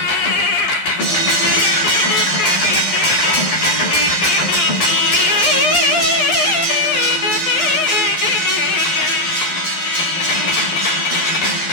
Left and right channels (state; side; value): late; right; 11 ms